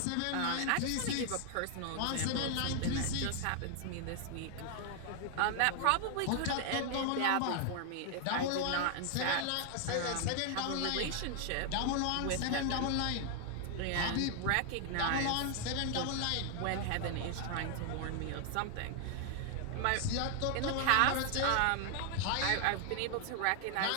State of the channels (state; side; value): different; both; correlation 0.00